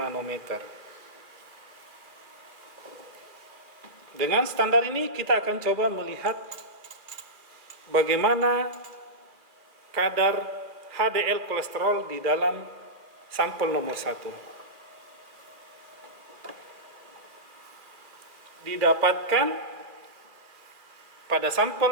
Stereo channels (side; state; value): left; late; 2.5 ms